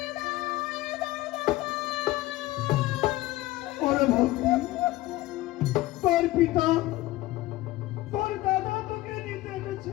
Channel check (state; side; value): quieter; right; 17.5 dB